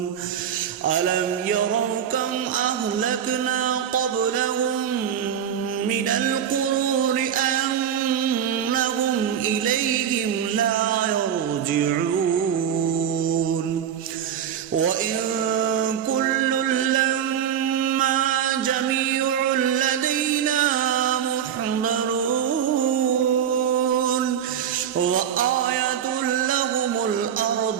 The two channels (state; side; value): quieter; left; 8.9 dB